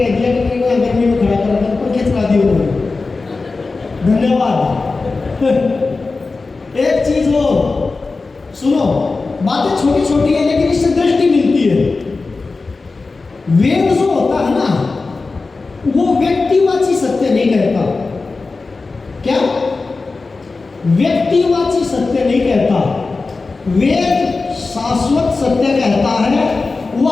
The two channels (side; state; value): right; quieter; 3.9 dB